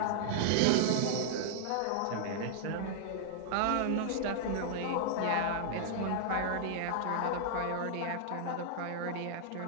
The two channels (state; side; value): different; both; correlation -0.01